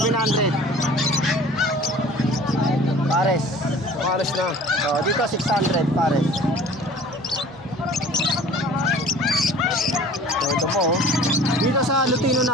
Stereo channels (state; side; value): normal; both; correlation 0.46